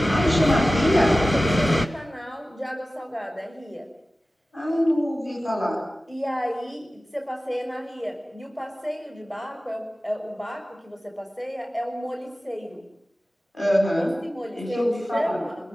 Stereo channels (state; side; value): normal; both; correlation 0.96